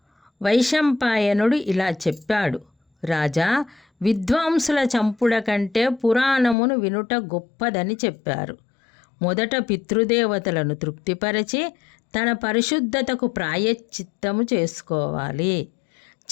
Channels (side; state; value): right; drops out; at 6.6 s